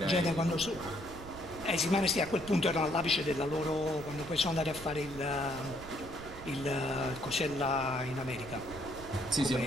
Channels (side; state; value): right; noise; rumble, 14 dB below the sound